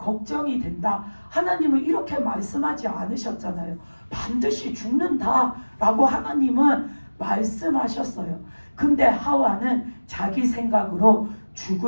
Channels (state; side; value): inverted; both; correlation -1.00